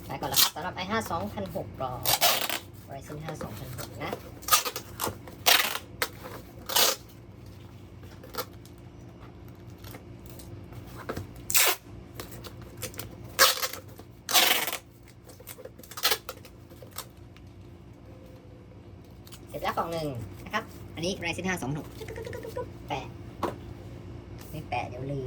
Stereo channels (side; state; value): both; identical; correlation 1.00